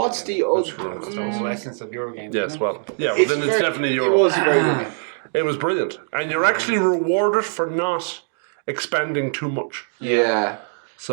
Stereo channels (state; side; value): silent; left; 60 dB below the other